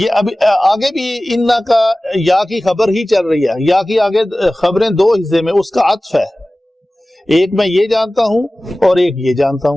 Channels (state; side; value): normal; both; correlation 0.97